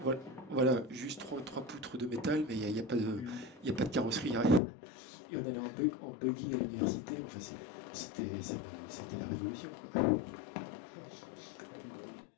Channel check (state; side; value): drops out; right; at 4.6 s